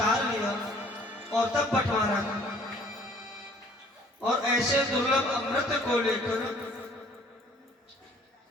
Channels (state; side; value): normal; both; correlation 0.56